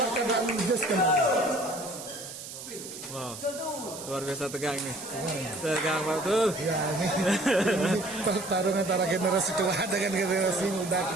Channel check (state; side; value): noise; right; hiss, 11 dB below the sound